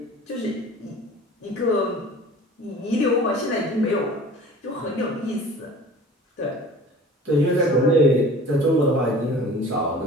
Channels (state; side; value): normal; both; correlation 0.43